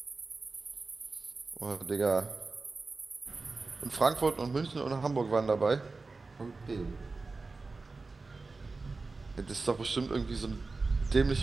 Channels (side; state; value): left; quieter; 3.8 dB